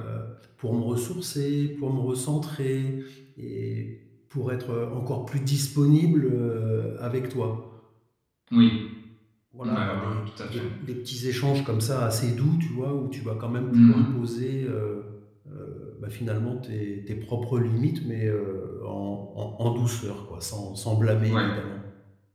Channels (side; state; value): both; identical; correlation 1.00